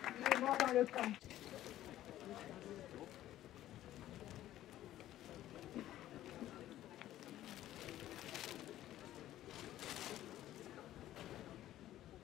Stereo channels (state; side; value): quieter; right; 13.5 dB